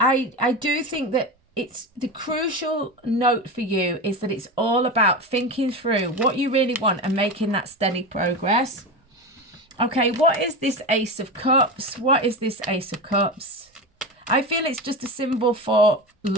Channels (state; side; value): normal; both; correlation 0.22